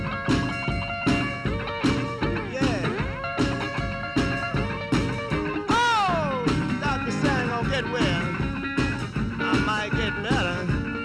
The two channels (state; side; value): identical; both; correlation 1.00